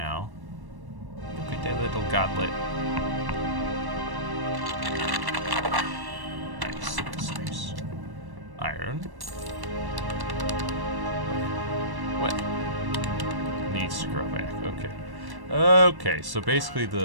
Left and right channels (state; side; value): late; left; 1.1 ms